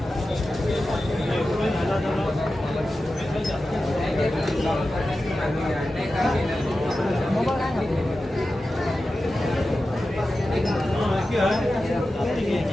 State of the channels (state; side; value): normal; both; correlation 0.93